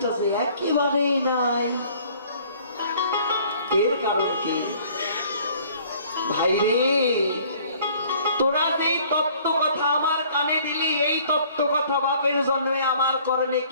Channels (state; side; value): inverted; both; correlation -0.55